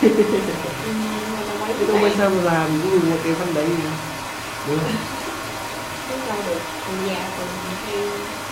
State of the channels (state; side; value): identical; both; correlation 1.00